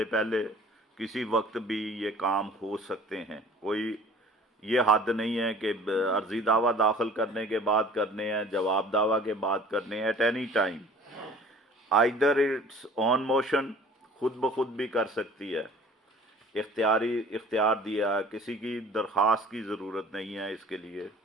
کسی وقت بھی یہ کام ہو سکتے ہیں، کوئی یہ حد نہیں ہے کہ عرضی دعویٰ داخل کرنے کے بعد کرنے ہیں، جواب دعویٰ کے بعد کرنے ہیں، at any time. Either it's on motion, خود بخود بھی کر سکتی ہے، اختیار دیا، کسی کی درخواست کی ضرورت نہیں ہے اس کے لیے،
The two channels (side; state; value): both; normal; correlation 0.49